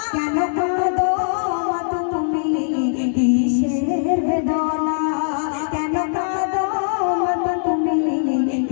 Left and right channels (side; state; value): right; silent; 65 dB below the other